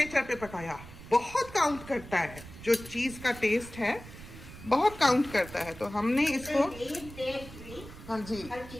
पे पकाया, बहुत काउंट करता है। जो चीज़ का टेस्ट है बहुत काउंट करता है। तो हमने इसको, हाँ जी,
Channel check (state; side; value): noise; right; rumble, 15 dB below the sound